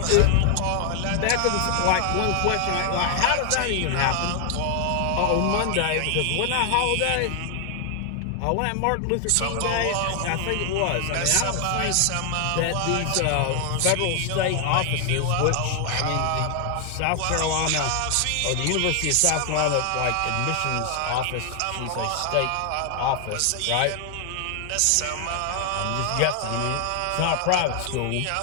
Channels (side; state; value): both; different; correlation 0.00